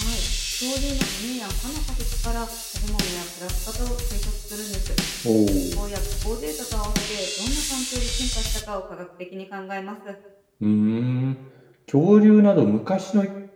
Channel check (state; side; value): identical; both; correlation 1.00